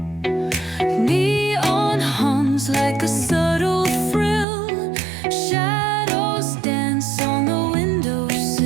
Neon hums like a subtle thrill. Shadows dance on the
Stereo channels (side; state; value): left; drops out; at 4.5 s